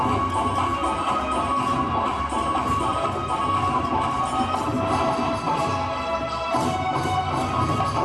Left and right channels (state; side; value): noise; right; rumble, 27 dB below the sound